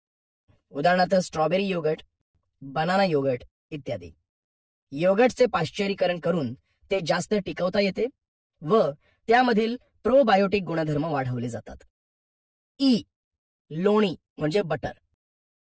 उदाहरणार्थ स्ट्रॉबेरी योगर्ट, बनाना योगर्ट इत्यादी. योगर्टचे पाश्चरीकरण करून ते जास्त टिकवता येते व त्यामधील प्रोबायोटिक गुणधर्म वाढवले जातात. लोणी म्हणजे बटर.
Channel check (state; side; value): identical; both; correlation 1.00